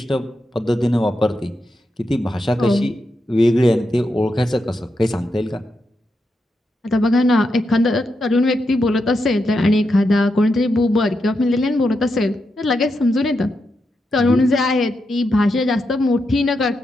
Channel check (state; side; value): normal; both; correlation 0.85